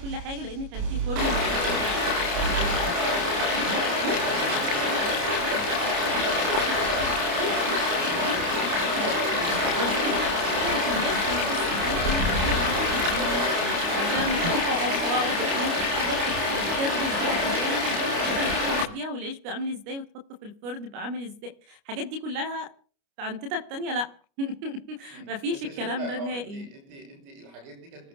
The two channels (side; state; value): left; late; 29 ms